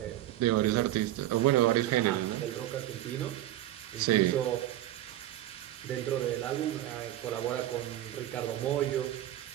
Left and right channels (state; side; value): quieter; left; 13.7 dB